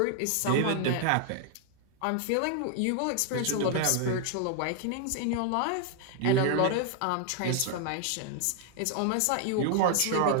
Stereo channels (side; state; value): both; different; correlation 0.00